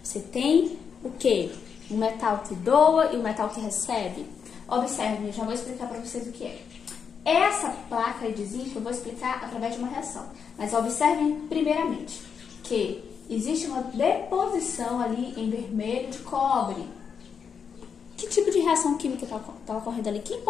Você tem o quê? Um metal que doa e um metal que recebe. Observe, eu já vou explicar para vocês o que é. Essa placa de zinco eu vou explicar através de uma reação. Mas observem primeiramente que existe uma deposição ali em vermelho de cobre. Que tipo de reação química está ocorrendo ali? Que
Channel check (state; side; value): quieter; right; 6.6 dB